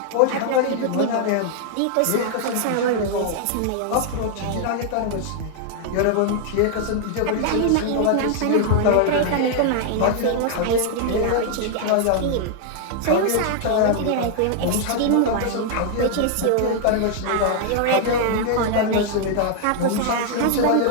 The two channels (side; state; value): both; different; correlation 0.00